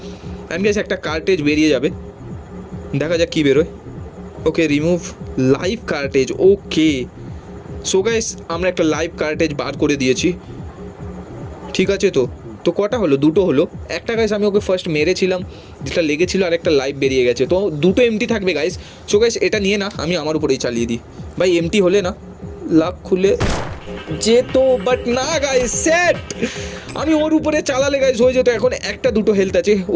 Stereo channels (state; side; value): identical; both; correlation 1.00